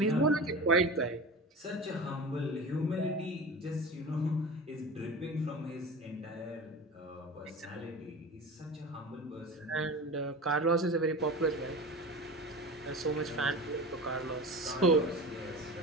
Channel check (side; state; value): both; normal; correlation 0.32